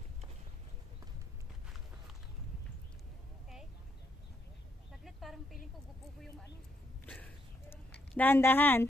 Parang feeling ko gupupo yung ano. Dahan-dahan.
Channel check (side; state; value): both; normal; correlation 0.76